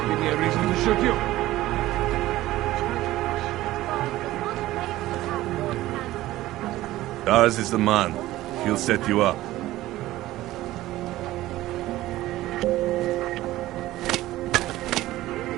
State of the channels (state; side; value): quieter; left; 16.2 dB